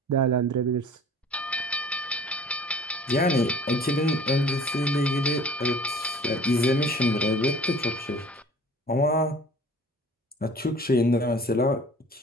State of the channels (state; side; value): normal; both; correlation 0.47